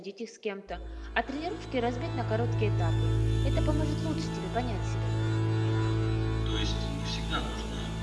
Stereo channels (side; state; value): both; identical; correlation 1.00